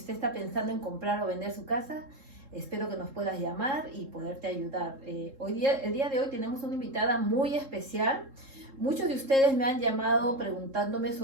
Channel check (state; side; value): late; left; 3.7 ms